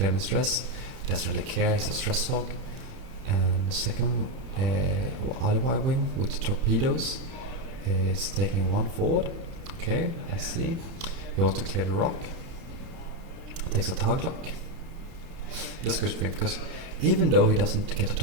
any stress. He doesn't really care. He's a stress hog. And the second other wing with torpedoes is taking 1 forward. Okay, I see. He wants to clear the rock. Takes a target lock. That's a good thing because even though he doesn't get a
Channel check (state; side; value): late; left; 30 ms